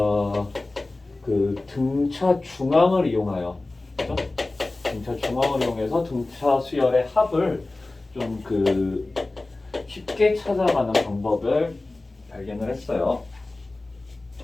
그 등차 중앙을 이용하여, 그죠? 등차 중앙을 이용해서 등차 수열의 합을 좀 그 쉽게 찾아가는 방법을 발견을 했어요.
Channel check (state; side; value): quieter; right; 3.0 dB